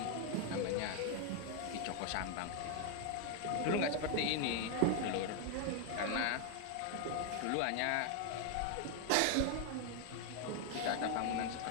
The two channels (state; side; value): different; both; correlation 0.00